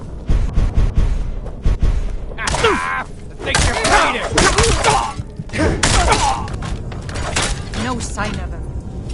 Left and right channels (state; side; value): identical; both; correlation 1.00